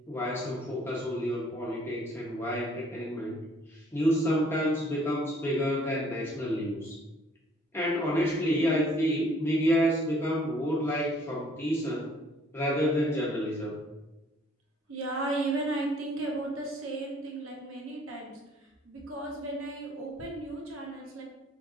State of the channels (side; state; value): both; normal; correlation 0.59